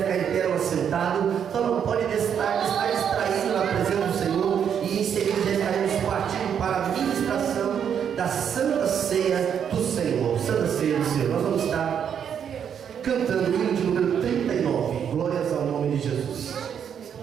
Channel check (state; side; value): quieter; left; 8.2 dB